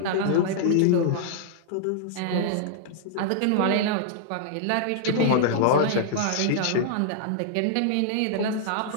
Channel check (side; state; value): both; different; correlation -0.01